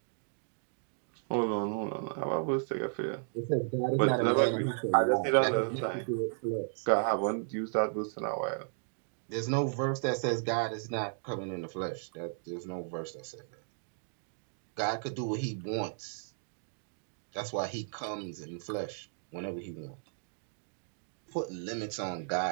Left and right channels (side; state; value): left; silent; digital silence